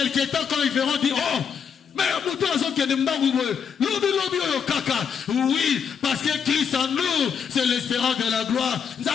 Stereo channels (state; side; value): quieter; right; 7.0 dB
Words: temps, quand ils verront, dire oh. Mais oui, parce que Christ en nous, c'est l'espérance de la gloire.